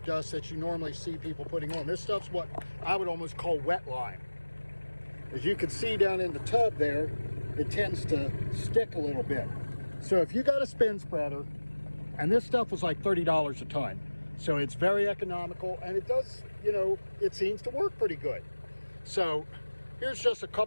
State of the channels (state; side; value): inverted; both; correlation -1.00